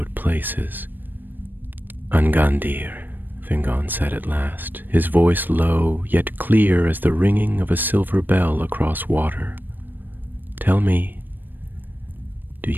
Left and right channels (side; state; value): left; late; 0.091 ms